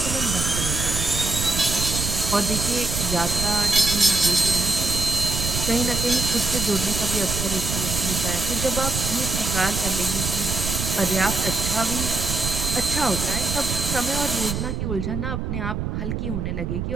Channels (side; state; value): right; noise; rumble, 3 dB below the sound